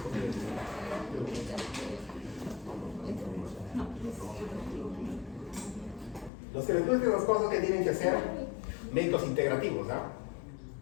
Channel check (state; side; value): drops out; right; at 6.3 s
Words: Los que les gustan las cosas que tienen que hacer, médicos integrativos, ¿ah?